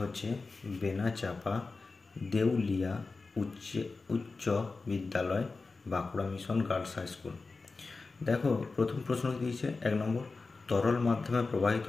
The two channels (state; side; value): quieter; right; 3.9 dB